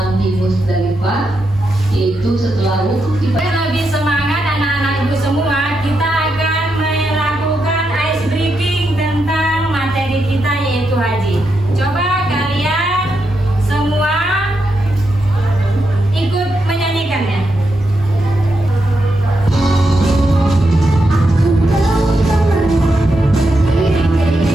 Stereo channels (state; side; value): normal; both; correlation 0.84